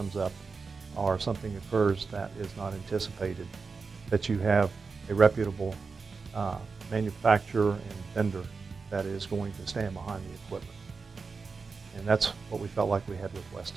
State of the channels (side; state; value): left; quieter; 4.7 dB